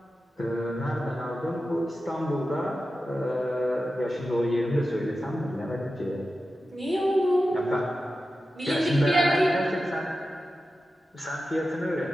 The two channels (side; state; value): both; normal; correlation 0.93